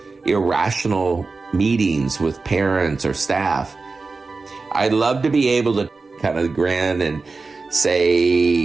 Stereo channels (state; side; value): quieter; left; 4.0 dB